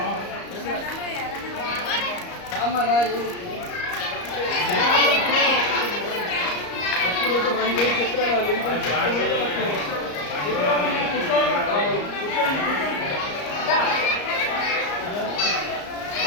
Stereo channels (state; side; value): late; right; 34 ms